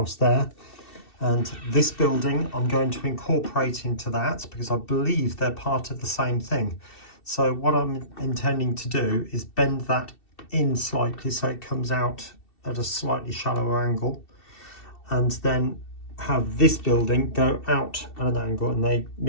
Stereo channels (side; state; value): right; late; 2.7 ms